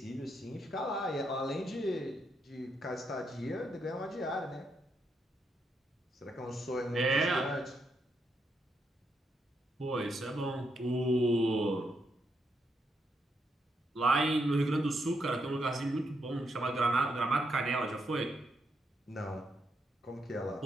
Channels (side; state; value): both; normal; correlation 0.79